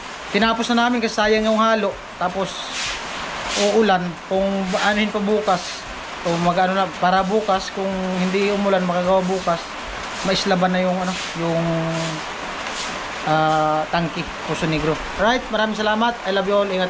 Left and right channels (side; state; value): both; identical; correlation 1.00